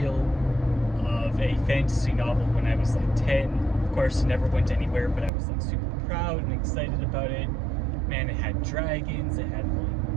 of a fantasy novel when I was like 10. Of course, it never went anywhere, but I was like super proud and excited about it. Man, it had dragons, it had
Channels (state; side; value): drops out; left; at 5.3 s